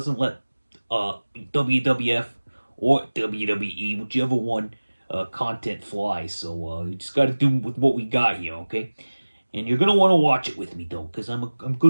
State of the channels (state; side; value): inverted; both; correlation -1.00